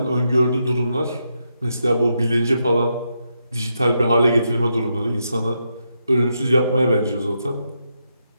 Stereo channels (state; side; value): inverted; both; correlation -0.83